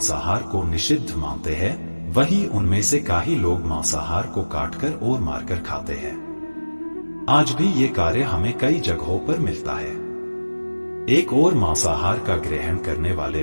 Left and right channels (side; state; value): both; inverted; correlation -1.00